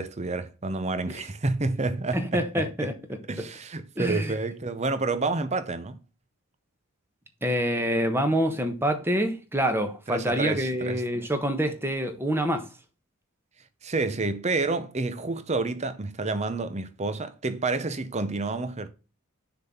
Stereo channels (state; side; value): normal; both; correlation 0.49